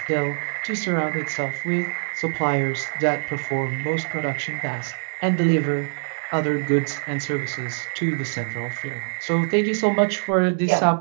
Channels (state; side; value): silent; left; 57 dB below the other